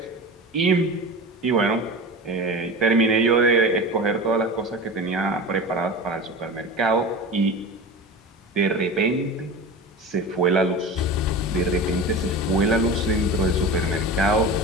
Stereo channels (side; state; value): both; normal; correlation 0.30